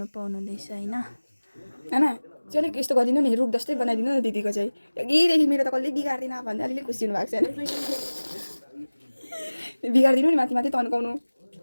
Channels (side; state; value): both; inverted; correlation -1.00